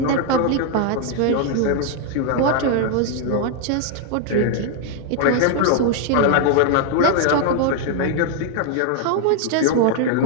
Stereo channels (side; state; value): both; different; correlation 0.00